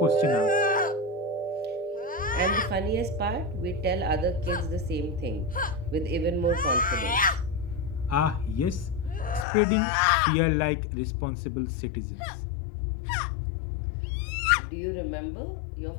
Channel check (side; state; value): right; drops out; at 9.5 s